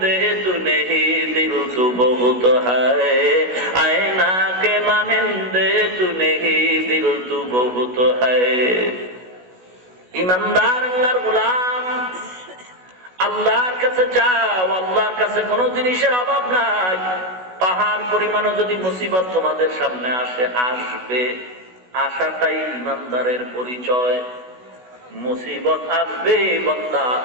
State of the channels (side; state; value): left; late; 16 ms